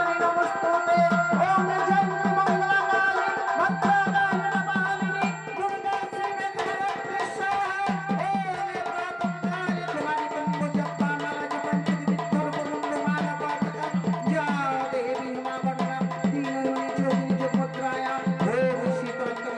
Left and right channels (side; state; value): both; identical; correlation 1.00